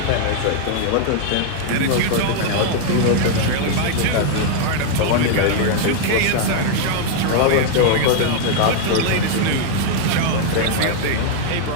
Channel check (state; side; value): different; both; correlation 0.00